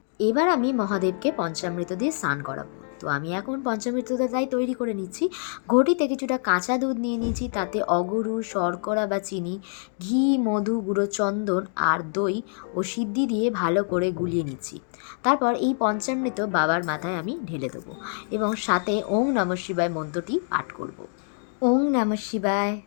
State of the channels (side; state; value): right; silent; 61 dB below the other